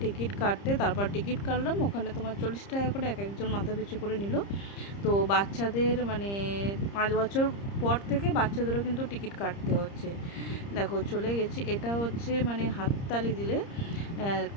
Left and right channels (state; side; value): late; right; 30 ms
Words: টিকিট কাটতে, তারপর টিকিট কাটলাম। ওখানে তোমার 40 টাকা করে এক একজন মাথা পিছু করে নিল। তো বাচ্চাদের 5 বছর পর থেকে বাচ্চাদেরও কিন্তু টিকিট কাটতে হচ্ছে। দেখো, চলে গেছি। এটা হচ্ছে হাততালি দিলে